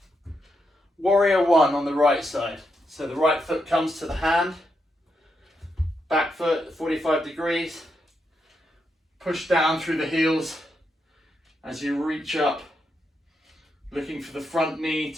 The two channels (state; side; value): normal; both; correlation 0.83